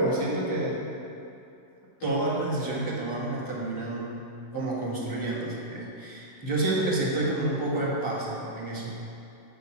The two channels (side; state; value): right; late; 15 ms